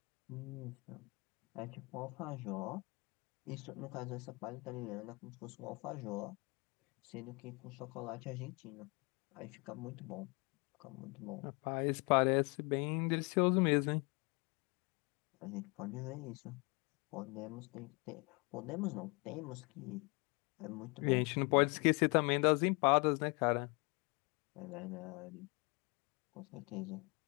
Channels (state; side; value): quieter; right; 30.1 dB